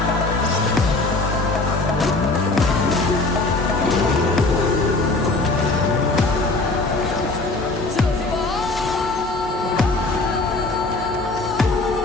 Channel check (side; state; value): right; quieter; 3.2 dB